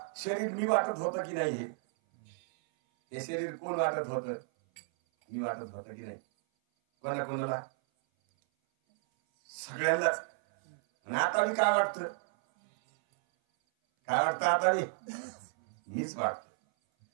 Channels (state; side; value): silent; left; 56 dB below the other